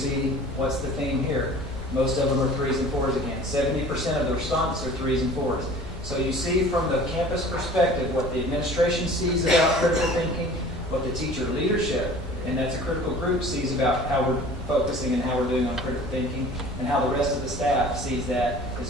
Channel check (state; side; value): normal; both; correlation 0.45